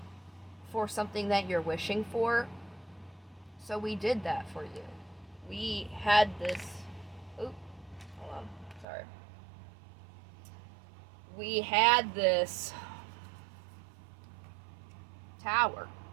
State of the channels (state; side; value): drops out; left; at 8.8 s